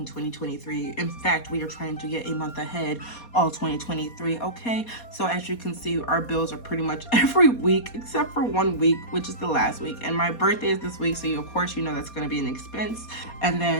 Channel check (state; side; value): late; right; 4.2 ms